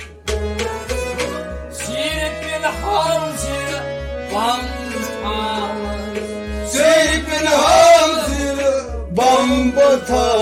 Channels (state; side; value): identical; both; correlation 1.00